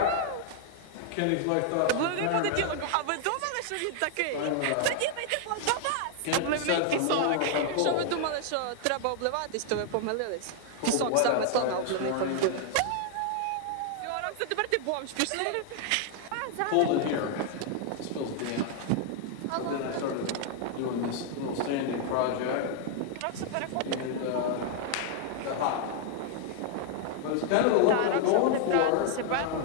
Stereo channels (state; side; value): different; both; correlation 0.00